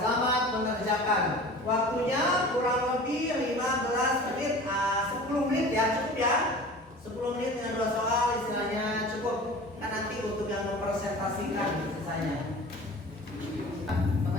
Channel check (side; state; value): both; normal; correlation 0.40